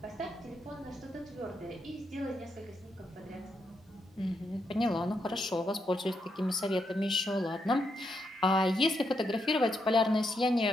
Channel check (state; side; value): normal; both; correlation 0.80